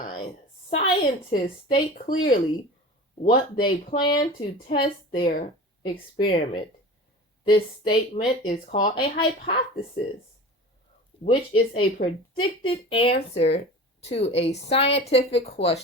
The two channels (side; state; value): both; normal; correlation 0.35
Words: scientists state clearly what they plan to test their experiment. This statement is called a hypothesis, which is a predicted answer to a scientific